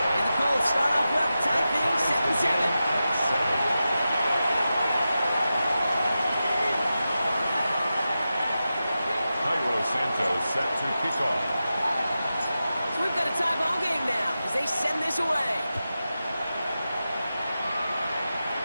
the Colts start off well, tie things 7-7. Santos set to kick off. So we've got a tie ball game now as they send this away.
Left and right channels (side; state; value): both; inverted; correlation -0.92